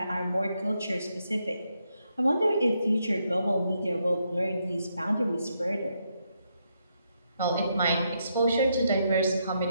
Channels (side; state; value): both; inverted; correlation -0.79